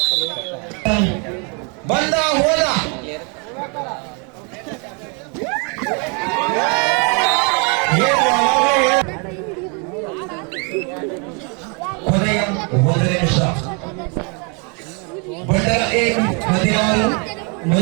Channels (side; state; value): left; quieter; 34.9 dB